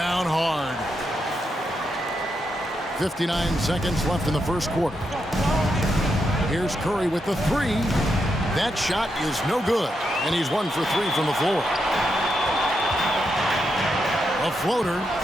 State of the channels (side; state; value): both; normal; correlation 0.83